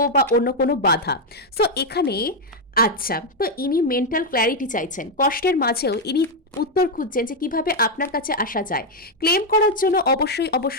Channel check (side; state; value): both; normal; correlation 0.02